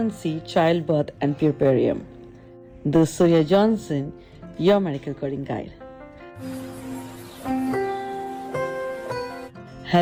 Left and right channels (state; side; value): identical; both; correlation 1.00